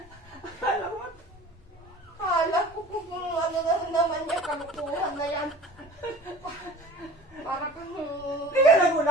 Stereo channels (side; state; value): both; normal; correlation 0.43